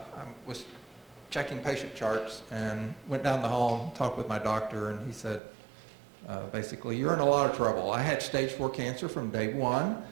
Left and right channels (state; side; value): drops out; left; at 5.4 s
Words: was checking patient charts and went down the hall and talked with my doctor, and he said, basically, you're in a lot of trouble. I had stage 4 cancer from day one.